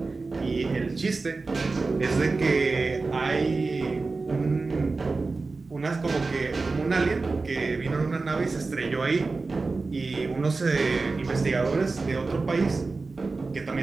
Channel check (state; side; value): quieter; left; 3.9 dB